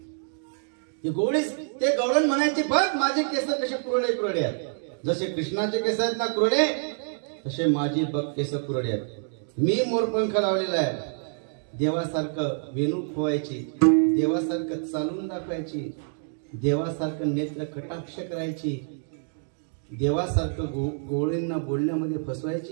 ते गवळण म्हणायचे, बघ माझे केस कसे कुरडे कुरडे आहेत, जसे कृष्णाचे केस आहेत ना कुरडे, तसे माझी बघ केस कुरडे आहेत. मी मोरपंख लावलेला आहे. देवासारखं वेणू खोवायची, देवासारखं चालून दाखवायची, देवासारखं नेत्र कटाक्ष करायची, देवासारखं गोळींना बोलण्यामध्ये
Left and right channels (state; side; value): silent; left; digital silence